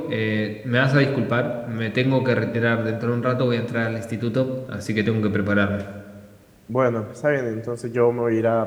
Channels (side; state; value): both; identical; correlation 1.00